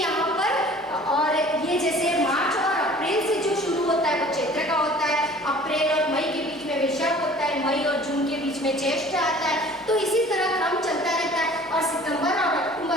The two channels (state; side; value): normal; both; correlation 0.48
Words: पर और ये जैसे मार्च और अप्रैल से जो शुरू होता है वो चैत्र का होता है, अप्रैल और मई के बीच में वैशाख होता है, मई और जून के बीच में ज्येष्ठ आता है। तो इसी तरह क्रम चलता रहता है। और सितंबर और